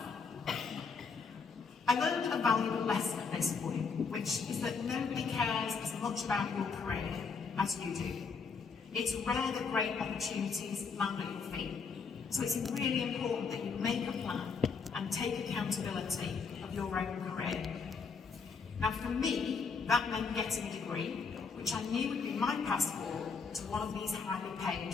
I learned a valuable lesson at this point, which is that nobody cares as much about your career as you do. It's rare that great opportunities land at your feet. So it's really important that you make a plan and take accountability of your own career. Now for me, that meant getting a degree, which I knew would be my passport to one of these highly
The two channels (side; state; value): right; quieter; 5.2 dB